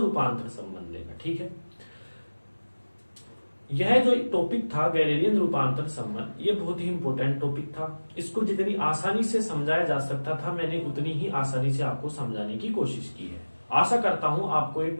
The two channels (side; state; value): both; inverted; correlation -1.00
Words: रूपांतरण संबंध देखा। ठीक है, यह जो टॉपिक था गैलीलियन रूपांतरण संबंध, ये बहुत ही इंपॉर्टेंट टॉपिक था। इसको जितनी आसानी से समझाया जा सकता था मैंने उतनी ही आसानी से आपको समझाने की कोशिश की है। आशा करता हूं आपको ये